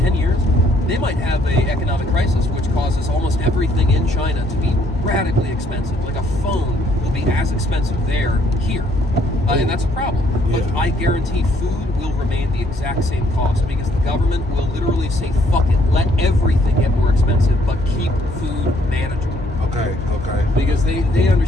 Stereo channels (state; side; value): normal; both; correlation 0.66